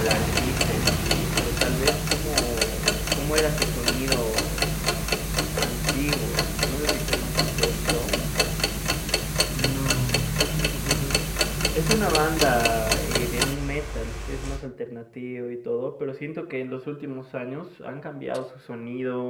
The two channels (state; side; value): identical; both; correlation 1.00